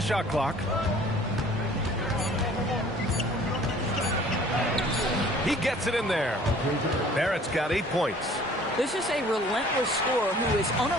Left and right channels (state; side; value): normal; both; correlation 0.52